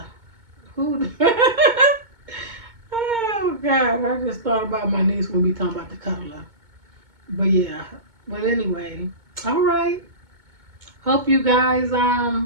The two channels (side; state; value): left; late; 2.2 ms